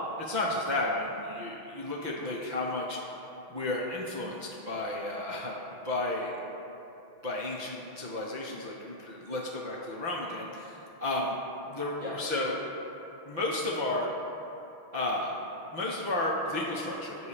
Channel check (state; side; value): late; left; 5.9 ms